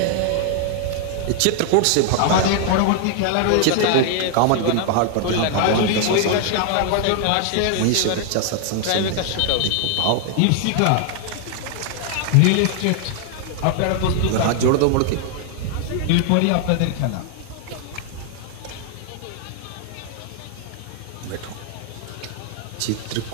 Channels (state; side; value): different; both; correlation 0.00